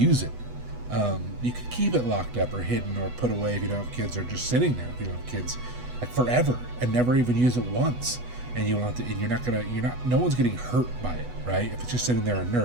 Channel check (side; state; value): left; late; 8.1 ms